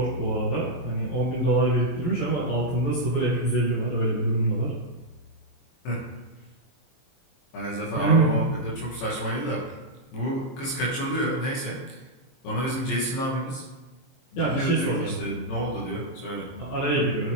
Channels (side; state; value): right; late; 23 ms